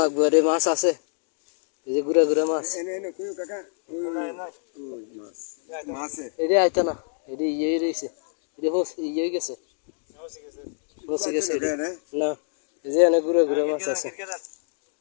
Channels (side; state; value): right; silent; digital silence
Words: লাগবে রে মাছ আছে এই যে গুড়া গুড়া মাছ এনে এনে কইও কাকা ওই মাছ মাছে এটা আইতো না এটা ইয়ে রয়েছে এটা ইয়ে গেছে মসি গেছে না এই যে এনে গুড়া গুড়া মাছ আছে